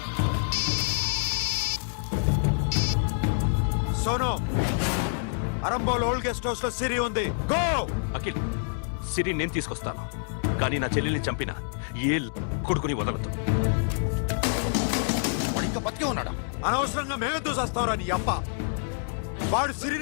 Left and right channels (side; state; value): right; silent; digital silence